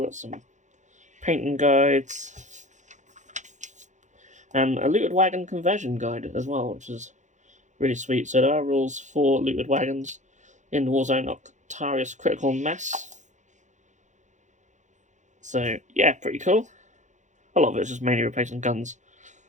Got some painting guides. And a looted wagon conversion guide as well, which is really sweet. So there are rules for looted wagons in the Warzone Octarius Critical Mass. So yeah, pretty cool. A lot of it's just mainly replacing guns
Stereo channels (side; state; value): left; late; 0.35 ms